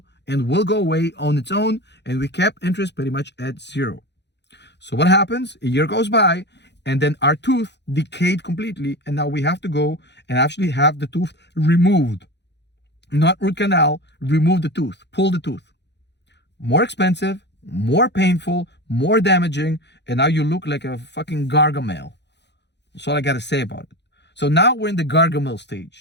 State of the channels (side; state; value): right; late; 0.50 ms